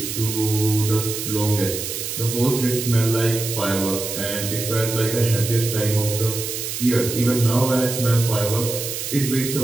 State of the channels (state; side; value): noise; right; hiss, 5 dB below the sound